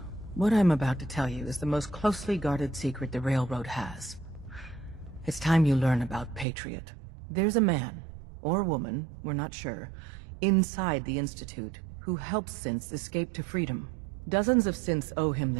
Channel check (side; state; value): left; drops out; at 6.5 s